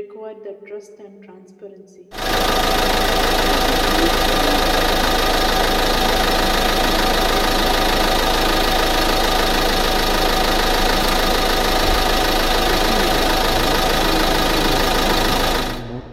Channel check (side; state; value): both; identical; correlation 1.00